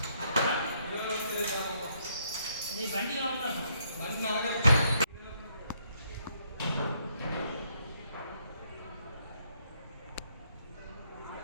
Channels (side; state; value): both; inverted; correlation -0.72